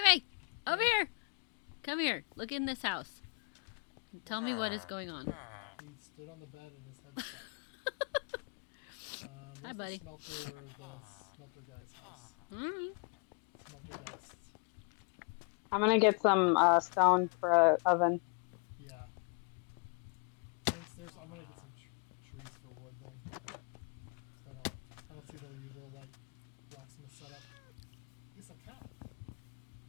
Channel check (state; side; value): quieter; right; 38.3 dB